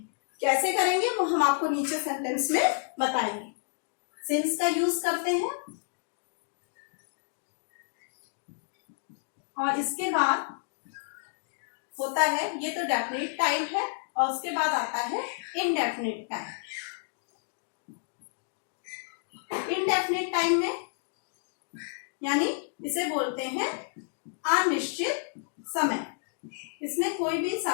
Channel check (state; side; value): silent; right; digital silence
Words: कैसे करेंगे वो हम आपको नीचे सेंटेंस में बताएंगे। सिंस का यूज करते हैं, और इसके बाद होता है, ये तो डेफिनिट टाइम है, और उसके बाद आता है इनडेफिनिट टाइम। इनडेफिनिट टाइम में यानी इसे बोलते हैं अनिश्चित समय, इसमें कोई भी